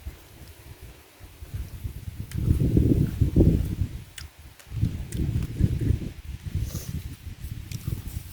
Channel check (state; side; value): identical; both; correlation 1.00